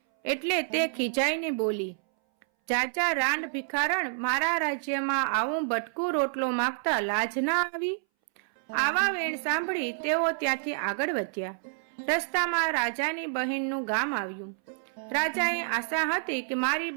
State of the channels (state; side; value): silent; left; 59 dB below the other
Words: એટલે તે ખીજાઈને બોલી, જાજા રાંડ ભિખારણ, મારા રાજ્યમાં આવું બટકું રોટલો માંગતા લાજ ના આવી? આવા વેણ સાંભળી તેઓ ત્યાંથી આગળ વધ્યા. રસ્તામાં રાજાની બહેનનું ગામ આવ્યું. રાજાએ આશા હતી કે મારી